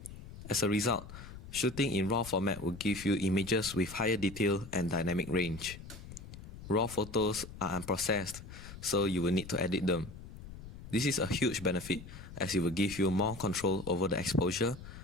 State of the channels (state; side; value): noise; left; rumble, 14 dB below the sound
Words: As a result, shooting in RAW format will give you images with higher detail and dynamic range. RAW photos are unprocessed, so you will need to edit them. This is a huge benefit as it will give you more control over the exposure,